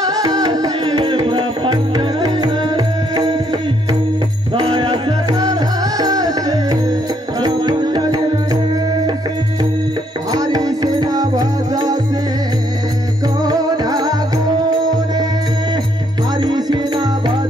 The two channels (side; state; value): both; normal; correlation 0.70